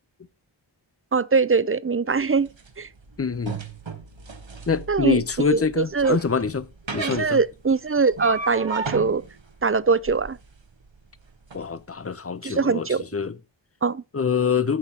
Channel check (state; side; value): normal; both; correlation -0.04